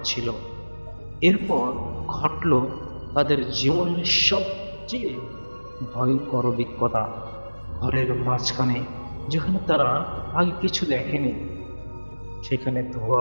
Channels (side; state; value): both; inverted; correlation -1.00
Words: এরপর ঘটল তাদের জীবনের সবচেয়ে ভয়ঙ্কর অভিজ্ঞতা। ঘরের মাঝখানে, যেখানে তারা আগে কিছু দেখেনি, সেখানে